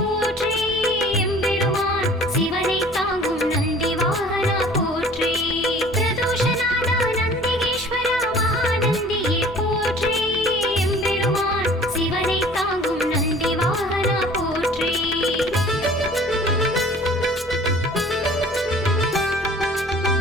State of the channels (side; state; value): right; noise; hum, 23 dB below the sound